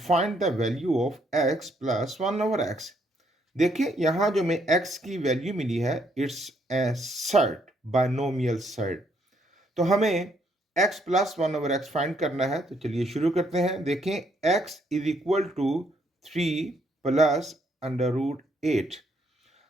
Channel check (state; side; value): normal; both; correlation 0.71